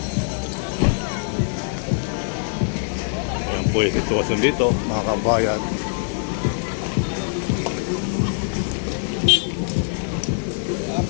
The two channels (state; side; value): silent; right; 63 dB below the other